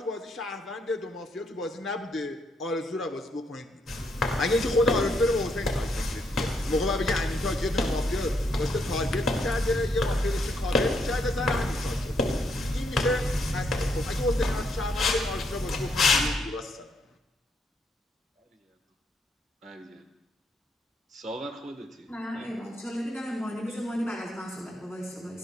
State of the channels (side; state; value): both; normal; correlation 0.75